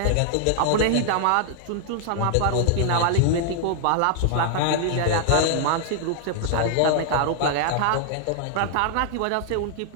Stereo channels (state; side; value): different; both; correlation 0.00